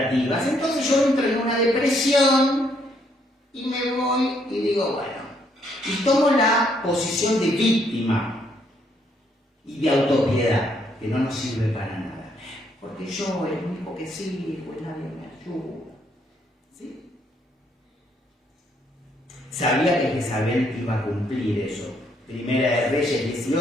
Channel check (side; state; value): both; normal; correlation 0.71